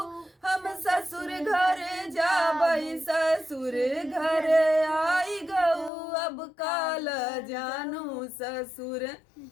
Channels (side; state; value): right; drops out; at 5.9 s